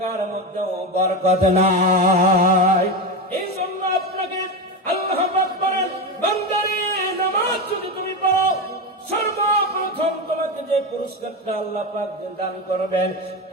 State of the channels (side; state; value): both; normal; correlation 0.17